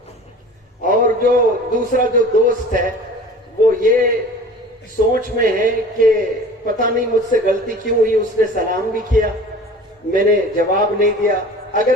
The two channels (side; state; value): both; normal; correlation 0.42